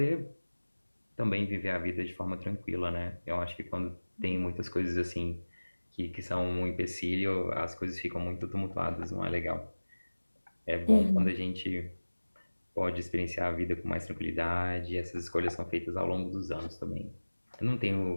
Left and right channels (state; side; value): inverted; both; correlation -1.00